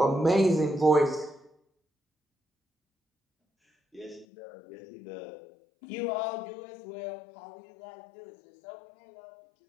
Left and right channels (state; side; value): drops out; right; at 4.2 s